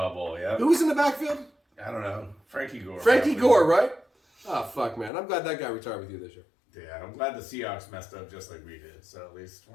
Bowl, yeah. Who was in the backfield? I don't know. Frankie Gore. Frankie Gore, right? Oh, fuck, man. I'm glad that guy retired with you this year. Yeah, I'm glad the Seahawks messed up just like we did, so at least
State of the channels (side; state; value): right; drops out; at 5.1 s